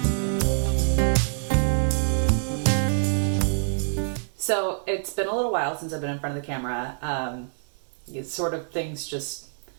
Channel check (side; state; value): left; silent; digital silence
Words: So it's been a little while since I've been in front of the camera. Things just